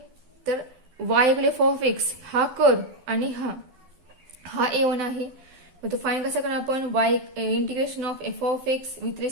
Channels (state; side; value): late; left; 12 ms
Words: तर y equal f of x हा कर्व आणि हा A1 आहे. मग तो फाईन कसा करणार आपण, Y integration of F of x with